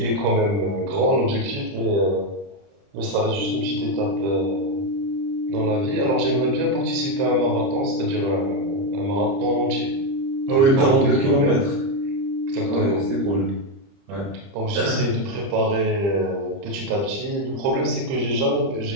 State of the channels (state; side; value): late; left; 30 ms